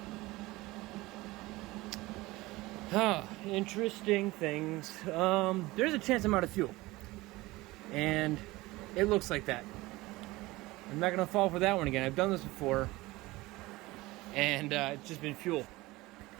Interesting things. There's a chance I'm out of fuel. And it looks like that. I'm not going to fall for that one again. I've done this before. And it's just been fuel.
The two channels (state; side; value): quieter; left; 20.1 dB